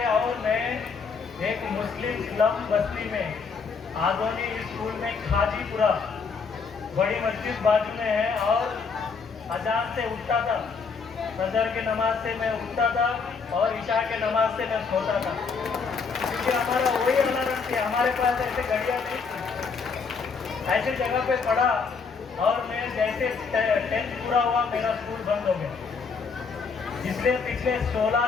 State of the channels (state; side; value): quieter; right; 5.2 dB